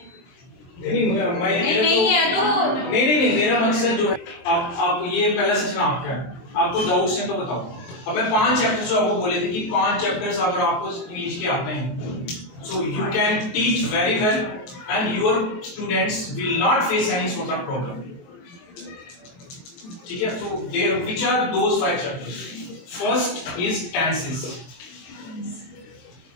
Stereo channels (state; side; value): late; right; 24 ms